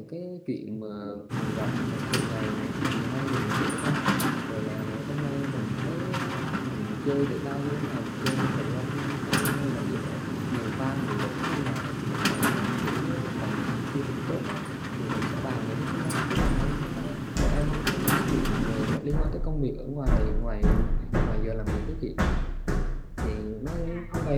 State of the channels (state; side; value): identical; both; correlation 1.00